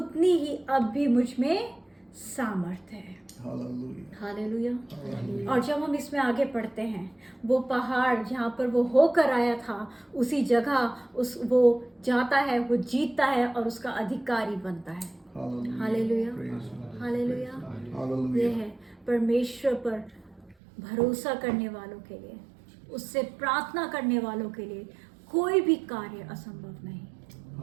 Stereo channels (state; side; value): drops out; left; at 20.6 s